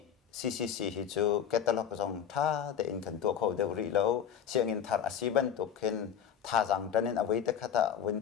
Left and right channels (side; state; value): right; quieter; 8.5 dB